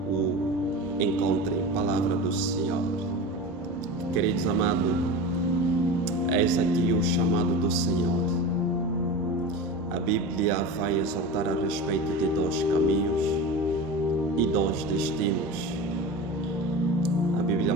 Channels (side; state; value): both; normal; correlation 0.29